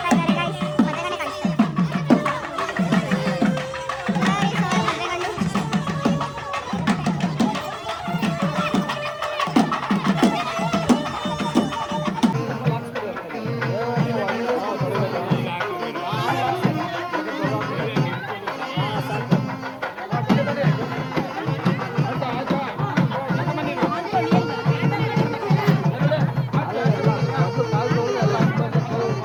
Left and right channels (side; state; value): both; identical; correlation 1.00